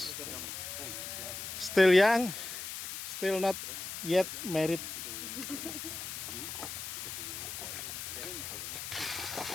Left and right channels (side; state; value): left; noise; hiss, 6 dB below the sound